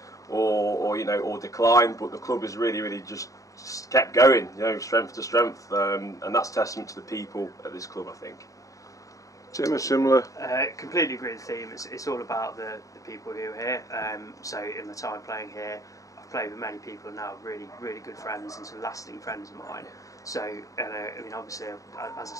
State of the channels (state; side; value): late; right; 0.16 ms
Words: or you know, or decline, but the club has really just kept going, you know, strength to strength, and that's testament to the people at this club, I think. Tim, a similar? Completely agree with the theme. It's all about the people who are here. So in my time playing here, I've played with many people now, really good friends and some lasting friends of mine. So, I mean, obviously, as I